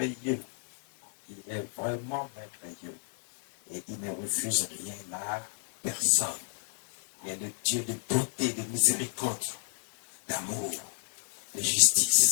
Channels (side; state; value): right; silent; digital silence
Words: Il est vraiment merveilleux. Et il ne refuse rien à personne. Il est le Dieu de beauté, de miséricorde, d'amour, de